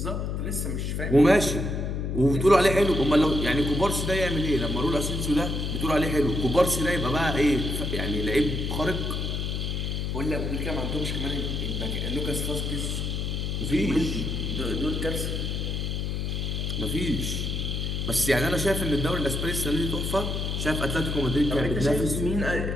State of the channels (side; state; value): left; noise; hum, 2 dB below the sound